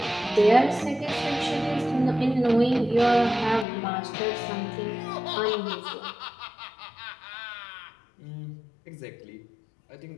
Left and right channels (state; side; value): drops out; right; at 3.7 s